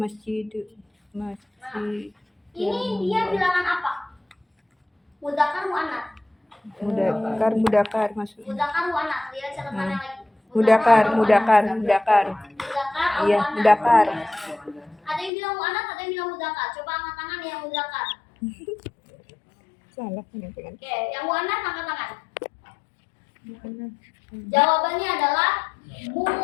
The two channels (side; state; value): right; drops out; at 15.3 s